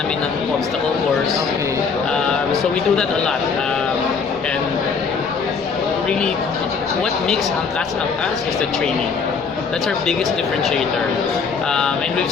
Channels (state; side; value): quieter; right; 5.4 dB